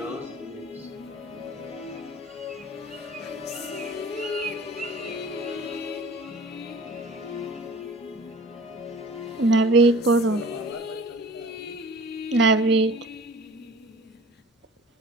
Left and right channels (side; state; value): both; normal; correlation 0.45